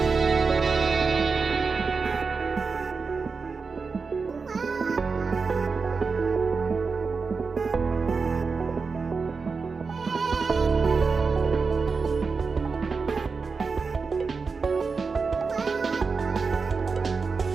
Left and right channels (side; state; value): left; quieter; 4.8 dB